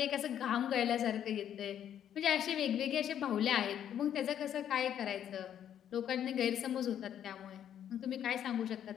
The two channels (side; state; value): right; quieter; 9.9 dB